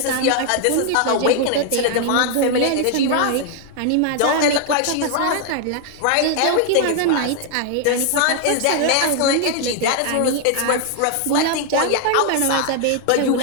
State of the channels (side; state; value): both; different; correlation 0.00